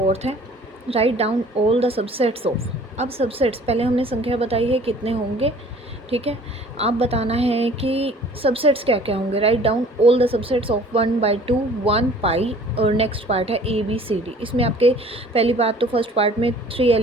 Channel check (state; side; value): normal; both; correlation 0.51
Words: है, write down all the subsets of. अब सबसेट्स पहले हमने संख्या बताई है कितने होंगे, ठीक है। आप बताना है कि सबसेट्स क्या क्या होंगे। Write down all the subsets of 1/2 1 पाई, और नेक्स्ट पार्ट है ABCD। इसमें आपके पहली बात तो फर्स्ट पार्ट में 3